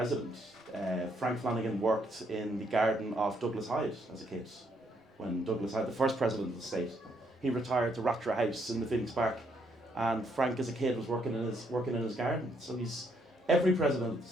Frank Flanagan worked in the garden of Douglas Hyde as a kid. When Douglas Hyde, the first president of the state, he retired to Rattray House in the Phoenix Park, and Frank as a kid was working in his garden. So he's every president of the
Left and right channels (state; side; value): normal; both; correlation 0.72